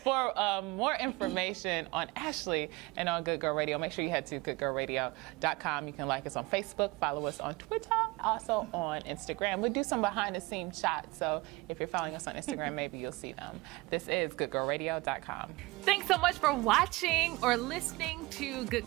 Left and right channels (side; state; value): left; quieter; 22.4 dB